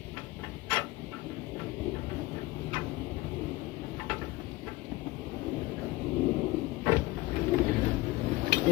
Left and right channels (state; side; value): quieter; right; 19.4 dB